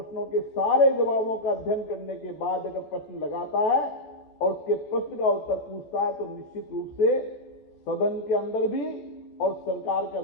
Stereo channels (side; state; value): right; late; 14 ms